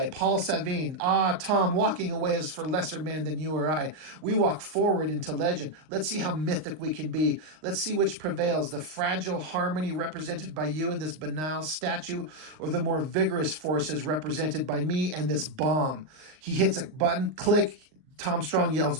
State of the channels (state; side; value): late; left; 39 ms